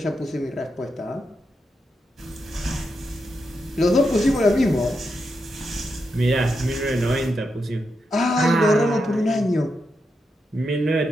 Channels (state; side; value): normal; both; correlation 0.85